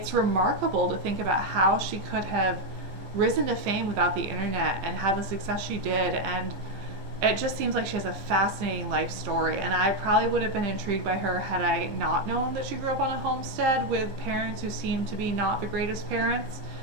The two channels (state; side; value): late; left; 15 ms